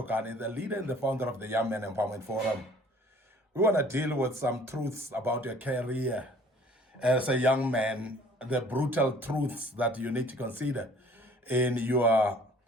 the leader and the founder of the Young Men Empowerment Forum. We want to deal with some truths about your career as a young man, the brutal truths that you need to consider in your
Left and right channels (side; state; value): both; normal; correlation 0.53